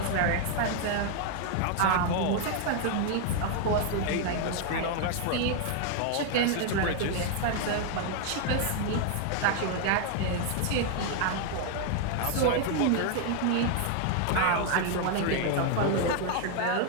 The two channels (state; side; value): different; both; correlation 0.00